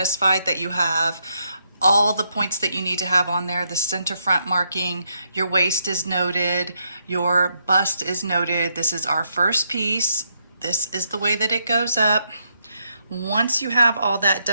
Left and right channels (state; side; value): inverted; both; correlation -0.78